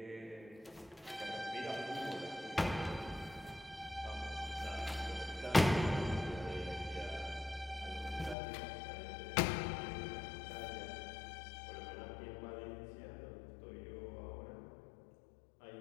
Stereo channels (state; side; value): drops out; right; at 8.3 s